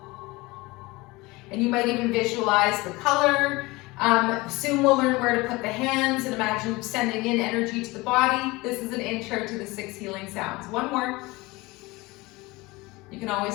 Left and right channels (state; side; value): quieter; right; 22.4 dB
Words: And you might even visualize the color. Soon we'll learn where to put the hands and imagine sending in energy to the body. This is an intro to the 6 healing sounds. One more. You can